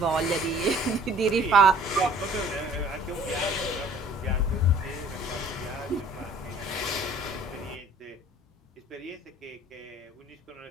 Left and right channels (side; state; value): both; normal; correlation 0.53